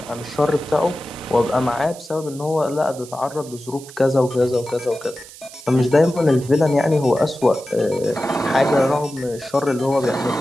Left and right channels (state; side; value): noise; right; hiss, 18 dB below the sound